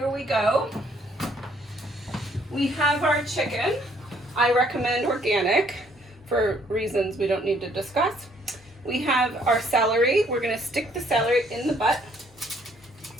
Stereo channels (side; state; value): both; normal; correlation 0.65